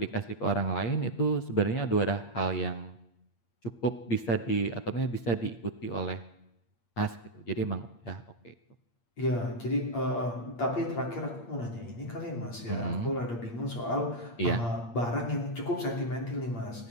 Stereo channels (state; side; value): late; right; 8.6 ms